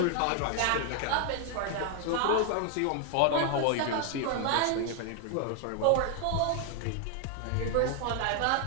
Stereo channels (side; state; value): both; different; correlation 0.01